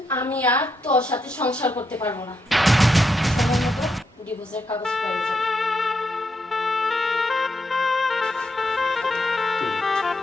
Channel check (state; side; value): normal; both; correlation 0.80